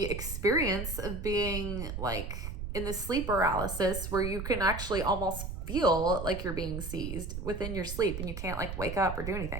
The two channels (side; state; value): right; noise; rumble, 6 dB below the sound